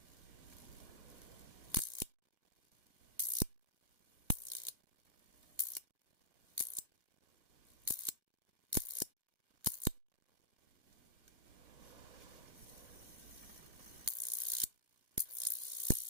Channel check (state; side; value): late; left; 1.5 ms